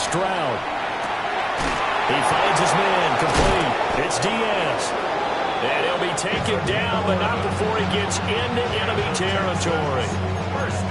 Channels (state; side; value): identical; both; correlation 1.00